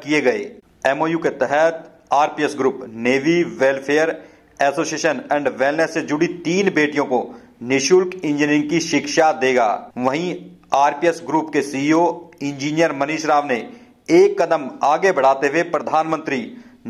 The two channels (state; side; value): identical; both; correlation 1.00